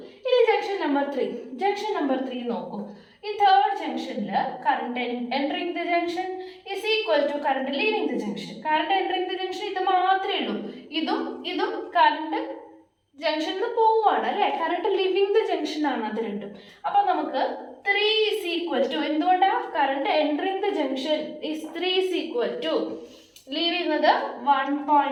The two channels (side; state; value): both; identical; correlation 1.00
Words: ഇനി ജംഗ്ഷൻ നമ്പർ 3. ജംഗ്ഷൻ നമ്പർ 3 നോക്കൂ. ഈ തേർഡ് ജംഗ്ഷനിൽ current entering the junction is equal to current leaving the junction. Current entering the junction ഇത് മാത്രമേ ഉള്ളൂ. ഇതും കറണ്ട് ജംഗ്ഷനിൽ നിന്ന് പോവുകയാണ് അല്ലേ? കറണ്ട് ലിവിങ് ദ ജംഗ്ഷൻ ആണ് അത് രണ്ടും. അപ്പൊ നമുക്ക് 3 ഈസ് ഈക്വൽ ടു, എന്തുകൊണ്ടാ? Current entering the junction is 3 is equal to leave ചെയ്യുന്നത്